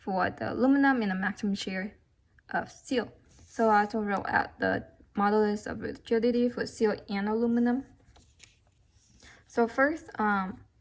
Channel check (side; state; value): both; identical; correlation 1.00